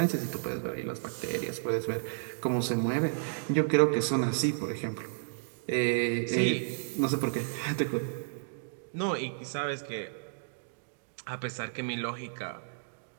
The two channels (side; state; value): left; silent; digital silence